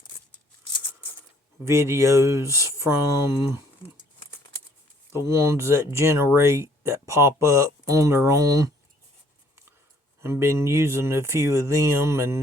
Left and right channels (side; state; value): both; normal; correlation 0.61